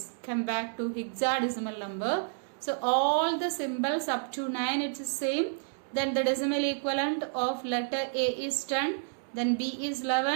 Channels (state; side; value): silent; left; digital silence